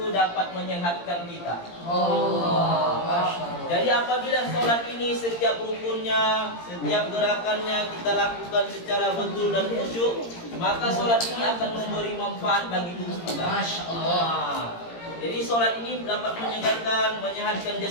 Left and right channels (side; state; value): right; late; 17 ms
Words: dapat menyehatkan kita. Jadi apabila sholat ini setiap rukunnya, setiap gerakannya kita lakukan secara betul dan khusyuk, maka sholat ini akan memberi manfaat bagi tubuh kita. Masya Allah. Jadi sholat ini dapat menyehatkan